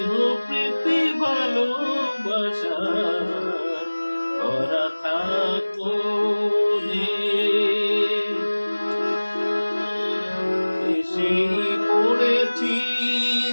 প্রীতি ভালোবাসা ভরা থাকো এসে পড়েছি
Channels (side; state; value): both; inverted; correlation -1.00